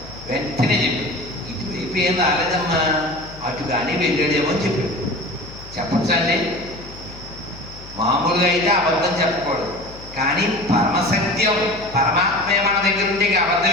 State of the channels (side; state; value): left; noise; hum, 17 dB below the sound